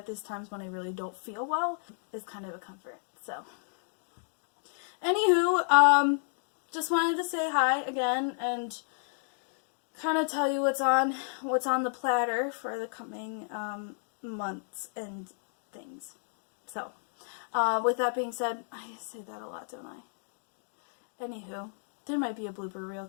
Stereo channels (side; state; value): right; silent; digital silence